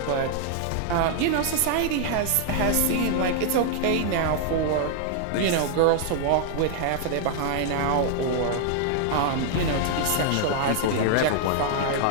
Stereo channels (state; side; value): different; both; correlation 0.00